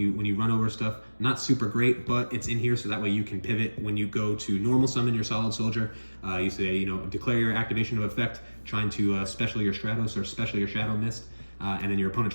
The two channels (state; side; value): inverted; both; correlation -1.00